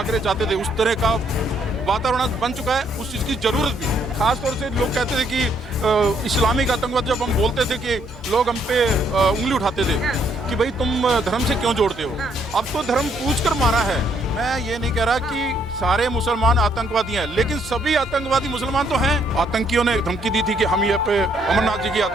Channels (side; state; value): both; normal; correlation 0.70